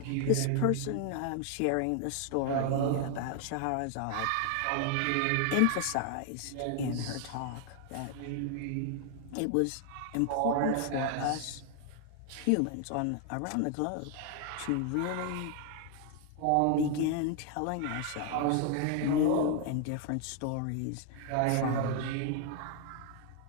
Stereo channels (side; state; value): both; different; correlation 0.00